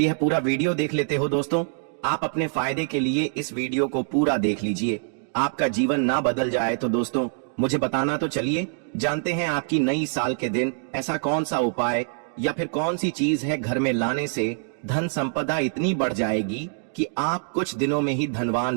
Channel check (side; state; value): left; silent; digital silence